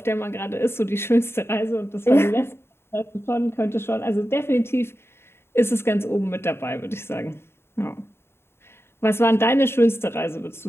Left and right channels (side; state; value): right; late; 0.12 ms